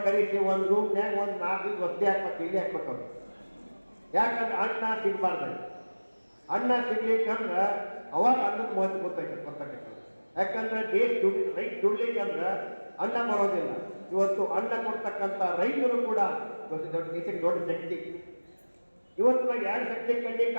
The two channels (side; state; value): both; inverted; correlation -1.00